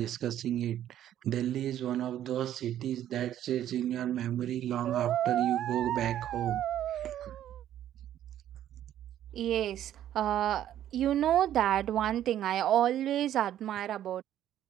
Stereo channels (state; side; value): quieter; left; 11.5 dB